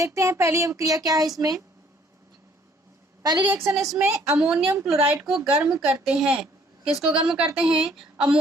हैं पहली अभिक्रिया क्या है। इसमें पहली रिएक्शन इसमें अमोनियम क्लोराइड को गर्म करते हैं। किसको गर्म करते हैं?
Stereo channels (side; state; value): both; normal; correlation 0.61